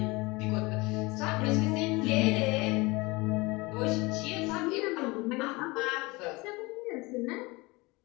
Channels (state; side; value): quieter; right; 23.9 dB